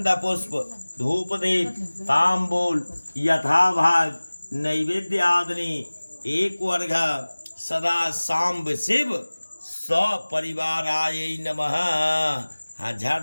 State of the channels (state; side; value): inverted; both; correlation -1.00